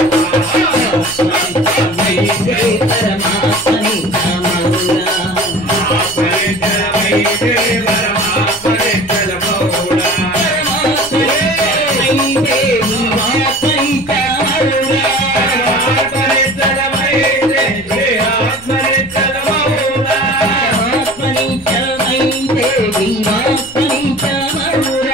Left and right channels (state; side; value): noise; left; rumble, 23 dB below the sound